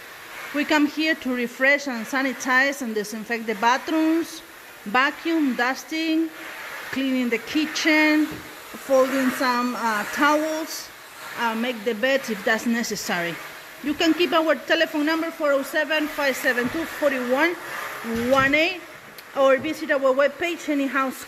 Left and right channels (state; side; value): identical; both; correlation 1.00